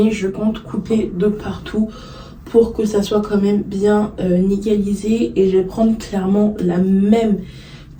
je compte couper de partout pour que ça soit quand même bien nickelisé. Et je vais prendre clairement la même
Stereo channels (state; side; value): identical; both; correlation 1.00